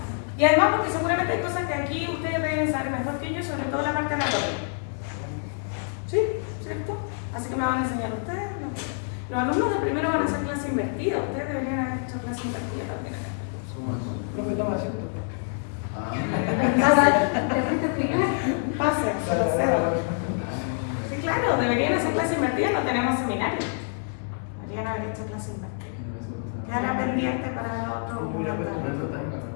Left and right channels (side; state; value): right; silent; 60 dB below the other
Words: Y además porque seguramente hay cosas que aquí ustedes deben saber mejor que yo, sobre todo la parte anatómica. ¿Sí? ¿Cierto? Así que me van a enseñar ustedes. Los alumnos de primero van a hacer clase invertida. Ustedes deberían haber hecho clase invertida también. Profe, toma asiento. Pase, se la cedo. Sí, claro, deberían hacer clase invertida, no tenemos seminario. Deberían haber hecho clase invertida. Quedará pendiente para el otro. Una